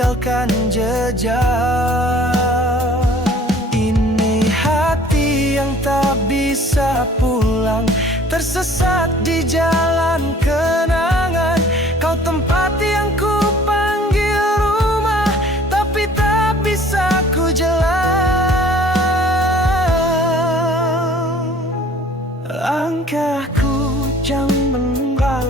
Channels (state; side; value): normal; both; correlation 0.52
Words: jejak. Ini hati yang tak bisa pulang, tersesat di jalan kenangan. Kau tempat yang ku panggil rumah, tapi tak bisa ku jalan. Langkahku jauh